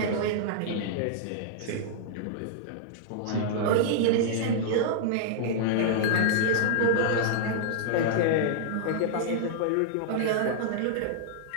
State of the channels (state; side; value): different; both; correlation -0.01